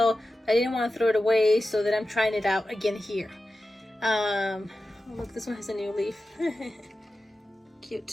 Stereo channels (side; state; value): both; normal; correlation 0.93